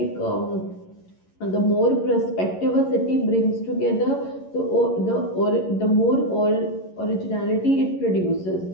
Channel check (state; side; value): late; right; 11 ms